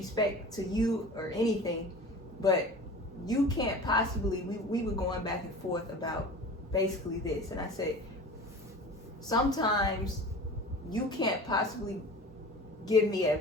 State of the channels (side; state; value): both; normal; correlation 0.38